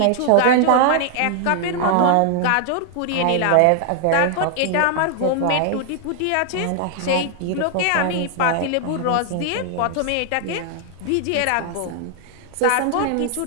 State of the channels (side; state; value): both; different; correlation 0.00